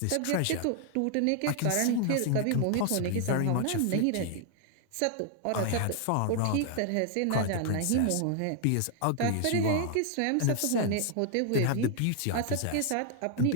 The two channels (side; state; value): both; different; correlation 0.00